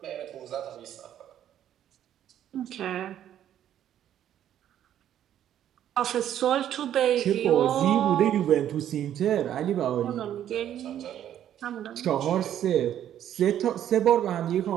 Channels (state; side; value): quieter; left; 10.8 dB